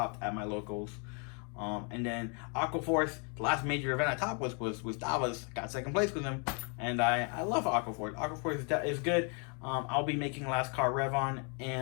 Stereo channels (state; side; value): quieter; right; 37.0 dB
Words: at my locals. And then Aquaforce, the last major event I topped was Davos. Got second place with him, and I love Aquaforce. Aquaforce is good. I'll be making Last Car Revon